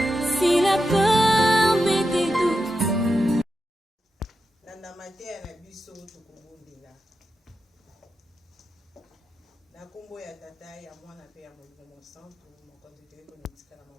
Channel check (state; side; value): normal; both; correlation 0.88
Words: Si la peur met des doutes. Nanda matea na biso tukubundila. Na kombo ya tata ya mwana pe ya Molimo Santo mokonzi teko nitika na